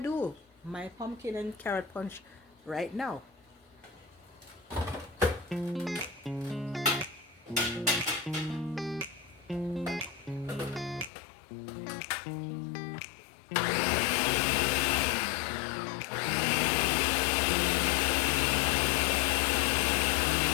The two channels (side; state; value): right; drops out; at 11.1 s